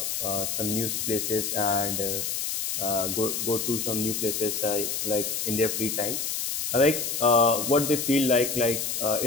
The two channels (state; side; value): noise; left; hiss, 2 dB below the sound